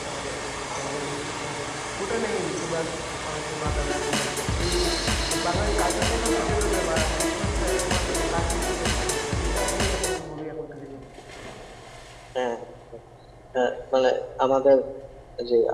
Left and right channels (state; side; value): identical; both; correlation 1.00